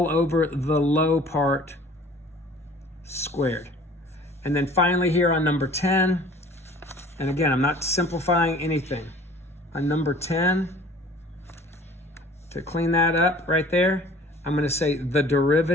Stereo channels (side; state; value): both; normal; correlation 0.49